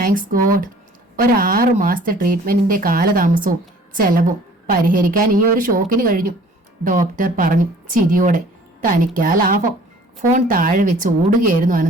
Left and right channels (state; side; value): normal; both; correlation 0.52